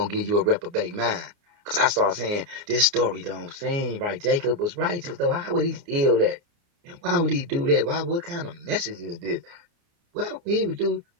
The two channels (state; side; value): late; left; 29 ms